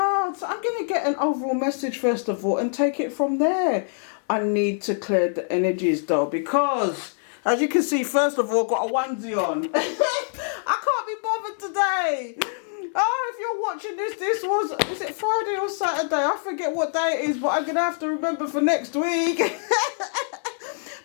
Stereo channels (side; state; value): right; silent; 62 dB below the other